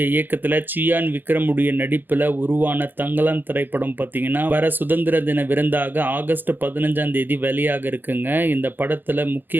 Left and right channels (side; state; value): left; late; 0.093 ms